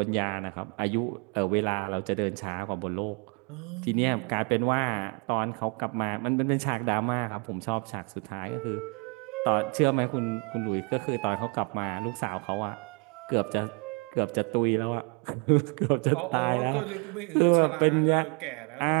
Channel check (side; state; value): left; quieter; 34.4 dB